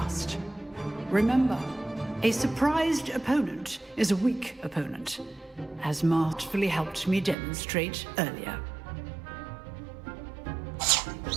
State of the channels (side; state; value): left; drops out; at 7.4 s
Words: Remember, a surprised opponent is a weak opponent, as masterfully helped me demonstrate earlier.